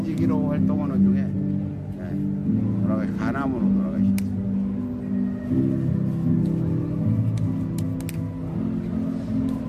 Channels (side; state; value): both; identical; correlation 1.00